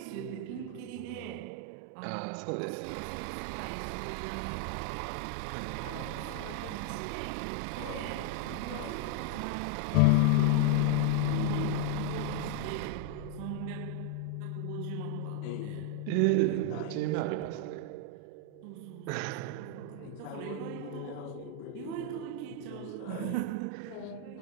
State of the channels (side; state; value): both; different; correlation 0.00